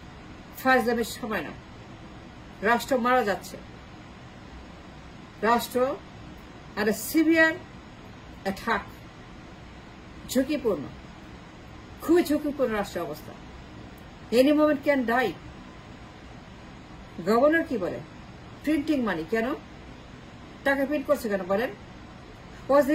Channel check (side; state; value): both; identical; correlation 1.00